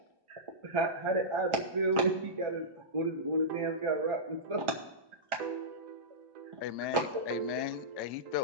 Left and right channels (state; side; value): late; left; 1.4 ms